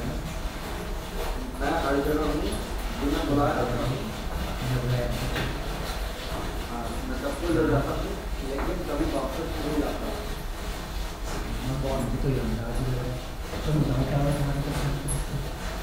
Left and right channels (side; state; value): both; identical; correlation 1.00